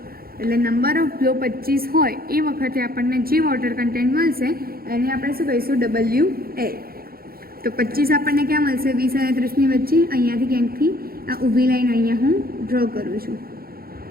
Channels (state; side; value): late; left; 0.44 ms